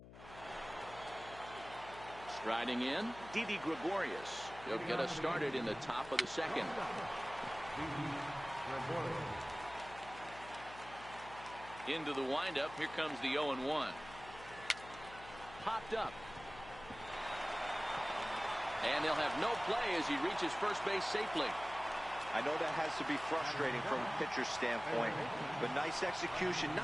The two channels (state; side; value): noise; left; hum, 16 dB below the sound